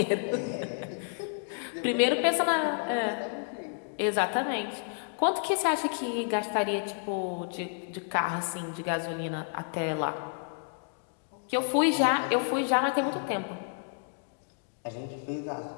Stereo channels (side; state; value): right; silent; 58 dB below the other